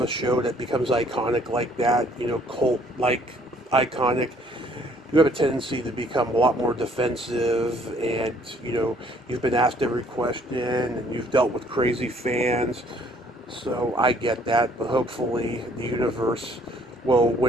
a show that becomes iconic like that, cult like iconic, you have a tendency to become a lot more defensive, and you've been asked every question and you've dealt with crazy fans. So I get that, but hopefully the universe will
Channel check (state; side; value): normal; both; correlation 0.61